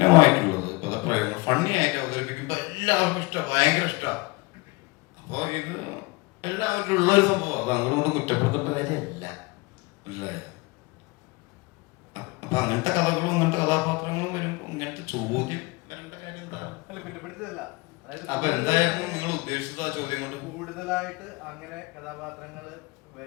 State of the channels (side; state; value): right; quieter; 24.6 dB